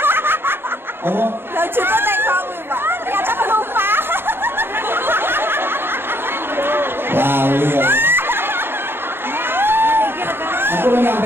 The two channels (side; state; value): left; late; 0.11 ms